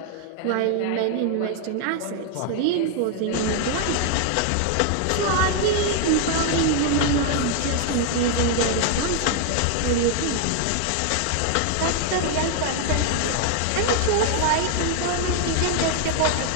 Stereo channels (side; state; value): both; different; correlation 0.00